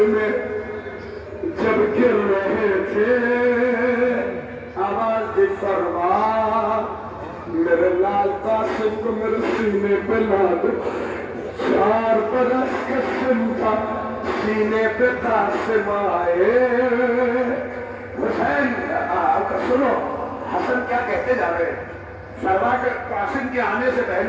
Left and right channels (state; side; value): identical; both; correlation 1.00